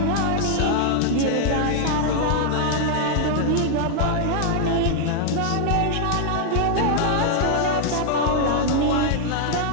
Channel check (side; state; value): both; different; correlation 0.00